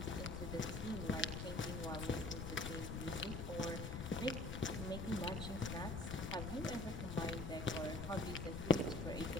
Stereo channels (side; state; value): left; noise; rumble, 5 dB below the sound